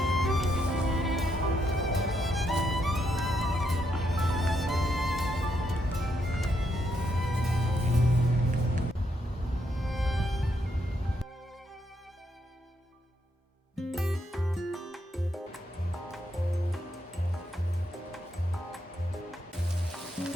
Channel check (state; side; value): normal; both; correlation 0.78